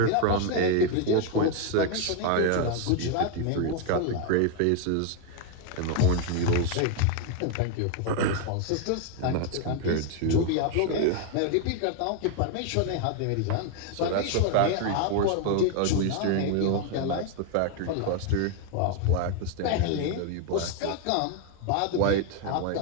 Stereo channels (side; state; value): both; different; correlation 0.01